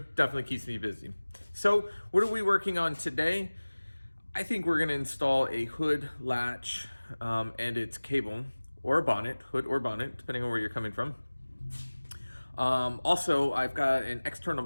keeps me busy. So, what are we working on today? I think we're going to install a hood latch and its cable, or a bonnet, hood or bonnet, depending on where you're coming from. Also, I've got an external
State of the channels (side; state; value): both; inverted; correlation -1.00